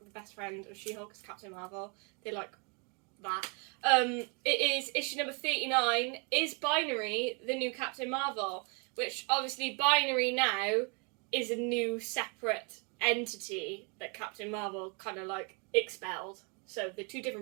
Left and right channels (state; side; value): quieter; left; 34.5 dB